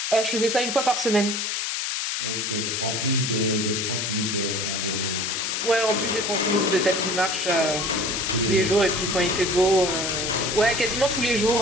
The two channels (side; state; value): left; noise; hiss, 1 dB below the sound